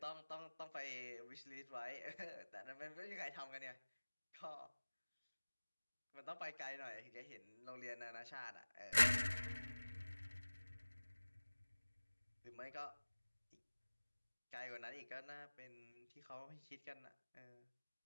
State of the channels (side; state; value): both; inverted; correlation -1.00